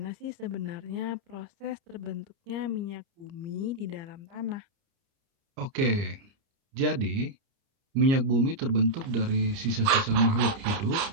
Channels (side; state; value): left; late; 30 ms